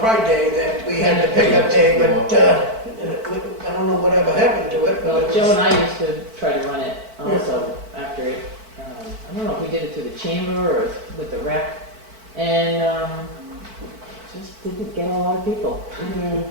Day, that we had the pickup day, but, I don't know whatever happened to it, Well, but it Joe and was, I used to try to run it also after it. I don't know if we did it through the chamber or with the rec, and just didn't get a lot of people.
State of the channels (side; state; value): left; late; 4.5 ms